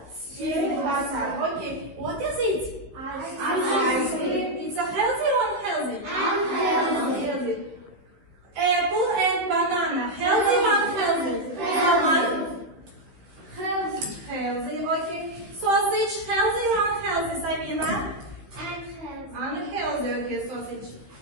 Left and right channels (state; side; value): late; left; 15 ms